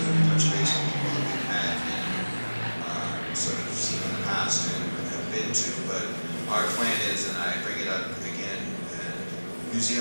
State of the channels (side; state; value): both; inverted; correlation -1.00